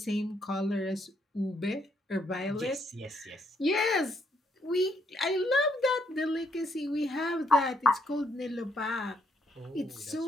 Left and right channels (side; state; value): both; normal; correlation 0.72